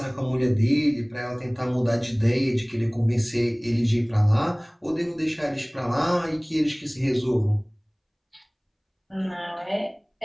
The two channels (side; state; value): both; identical; correlation 1.00